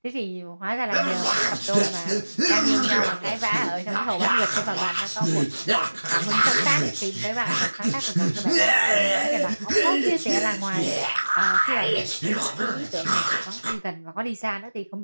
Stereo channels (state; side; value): inverted; both; correlation -1.00